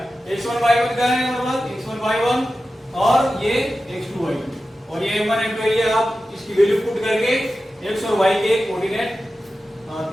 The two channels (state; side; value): normal; both; correlation 0.93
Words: x1 y1 का है हमारे पास, x1 y1 और ये x2 y2 और ये m1 m2 एरिया। आप इसकी वैल्यू पुट करके x और y के कोऑर्डिनेट p